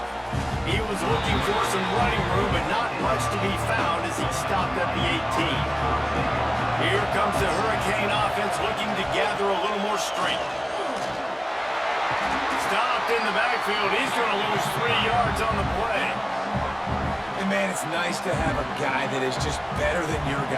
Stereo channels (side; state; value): both; identical; correlation 1.00